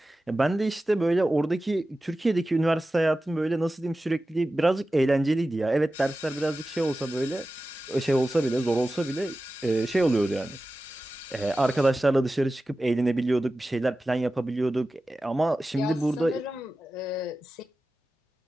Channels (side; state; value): both; normal; correlation 0.95